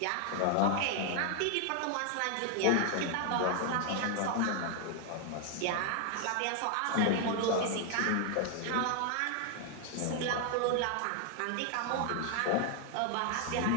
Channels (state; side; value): different; both; correlation 0.00